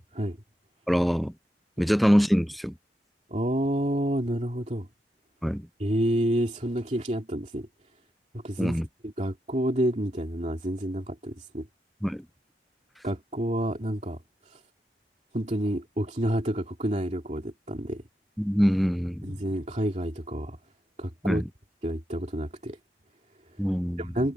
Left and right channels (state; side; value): normal; both; correlation 0.85